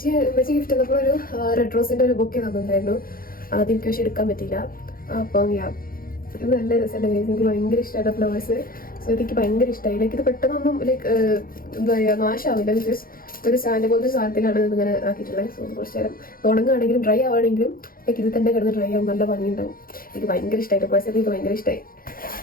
ഗിഫ്റ്റ് തന്നപ്പോൾ ഒരു റെഡ് റോസിൻ്റെ ഒരു ബൊക്കെ തന്നിട്ടുണ്ടായിരുന്നു. അതെനിക്ക് പക്ഷെ എടുക്കാൻ പറ്റിയില്ല. അപ്പം ഇത് നല്ല രസമല്ലേ ഗൈസ്. എനിക്ക് ഭയങ്കര ഇഷ്ടമായിട്ട് ഫ്ലവേഴ്സ്. സോ എനിക്ക് ഭയങ്കര ഇഷ്ടമായി. ലൈക്ക് ഇത് പെട്ടെന്നൊന്നും ലൈക്ക് എന്താ പറയുക നാശമാവില്ല. ബിക്കോസ് ഒരു സ്റ്റാൻഡ് പോലത്തെ സാധനത്തിലാണ് ഇതിങ്ങനെ ആക്കിയിട്ടുള്ളത്. സോ കുറച്ച് നേരം ഉണങ്ങുകയാണെങ്കിലും ഡ്രൈ ആവുകയാണെങ്കിലും ലൈക്ക് ഇത് തന്നെ കിടന്ന് ഡ്രൈ ആവും. നല്ല ഭംഗിയുണ്ടാവും. എനിക്ക് ഭയങ്കര ഇഷ്ടമായിട്ട് പേഴ്സണലി എനിക്ക് ഭയങ്കര ഇഷ്ടമായി.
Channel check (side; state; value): right; late; 0.42 ms